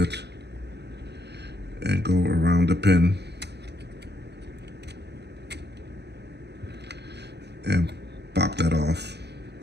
and go around the pin and pop that off.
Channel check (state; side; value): late; left; 0.49 ms